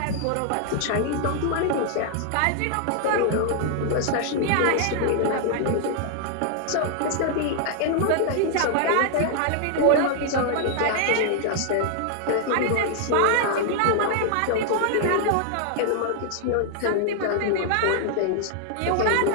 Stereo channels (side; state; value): both; different; correlation 0.00